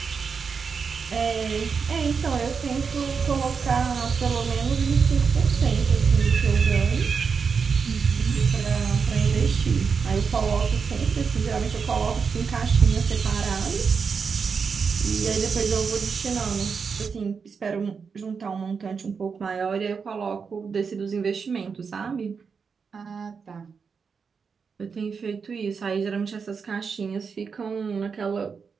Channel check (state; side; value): quieter; left; 5.7 dB